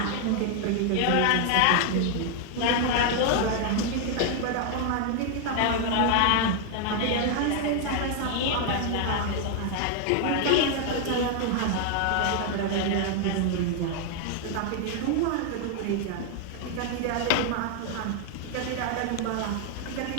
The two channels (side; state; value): both; different; correlation 0.00